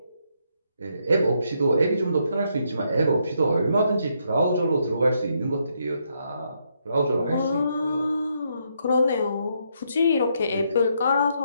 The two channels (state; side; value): inverted; both; correlation -0.76